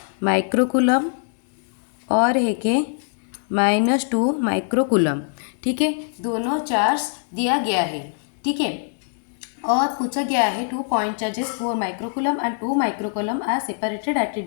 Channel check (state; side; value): silent; right; digital silence